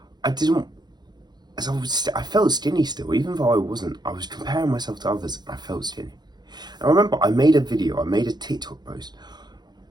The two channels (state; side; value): late; left; 0.20 ms